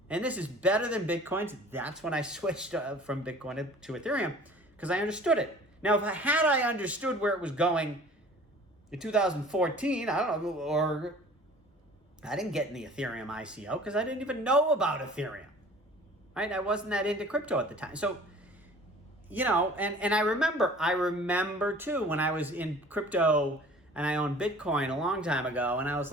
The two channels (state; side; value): normal; both; correlation 0.47